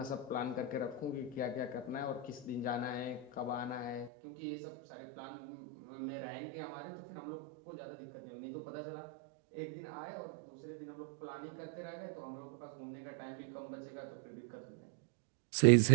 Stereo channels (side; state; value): left; drops out; at 4.1 s